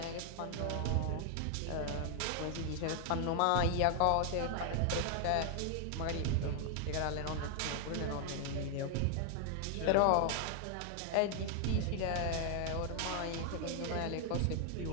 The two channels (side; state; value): both; different; correlation 0.00